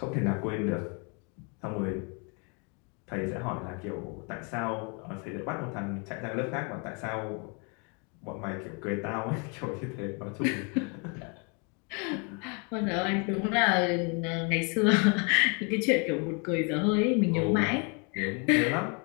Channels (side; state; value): right; quieter; 34.8 dB